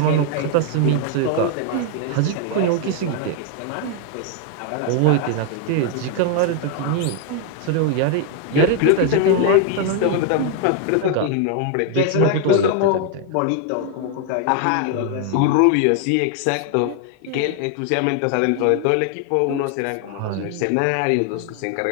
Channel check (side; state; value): both; different; correlation 0.00